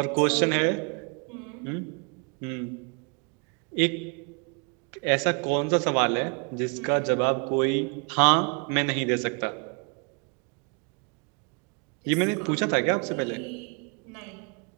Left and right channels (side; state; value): left; quieter; 35.4 dB